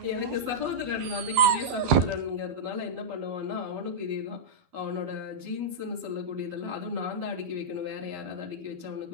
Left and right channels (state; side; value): late; left; 12 ms